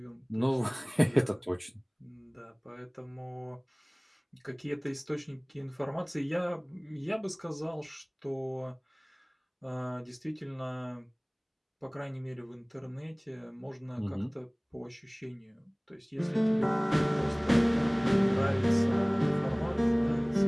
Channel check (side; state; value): both; identical; correlation 1.00